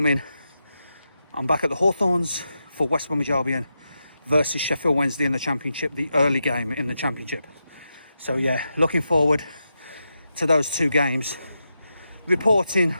I'm back at the Hawthorns for West Bromwich Albion versus Sheffield Wednesday in the Championship, the early game in the Championship. So yeah, looking forward to those 2 games, reporting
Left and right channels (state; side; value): inverted; both; correlation -0.87